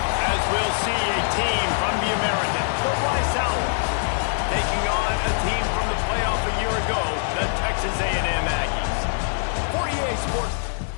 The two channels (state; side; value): silent; right; digital silence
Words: As we'll see, a team from the American, the Rice Owls, taking on a team from the playoff a year ago, the Texas A&M Aggies. For EA Sports.